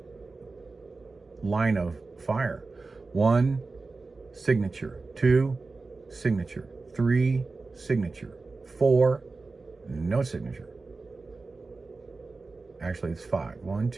line of fire. 1, signature. 2, signature. 3, signature. 4, no signature. Actually, it's 5. 1,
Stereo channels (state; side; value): quieter; left; 3.8 dB